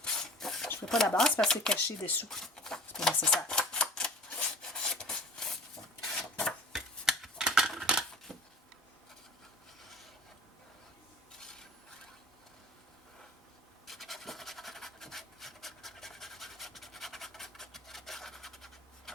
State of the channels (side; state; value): both; normal; correlation 0.42